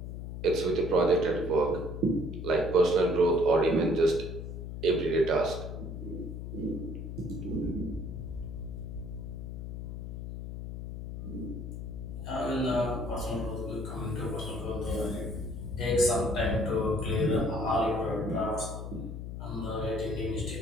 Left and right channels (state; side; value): noise; left; hum, 7 dB below the sound